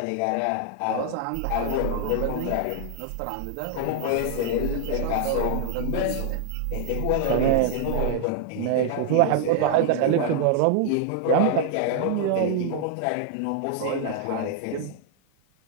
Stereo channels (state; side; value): different; both; correlation 0.00